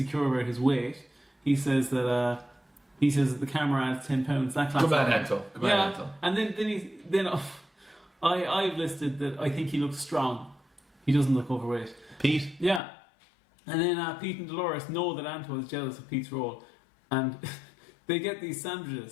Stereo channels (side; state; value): right; drops out; at 12.8 s